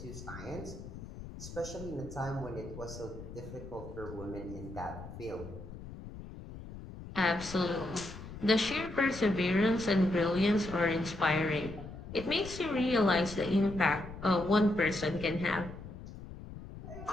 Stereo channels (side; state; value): left; noise; rumble, 12 dB below the sound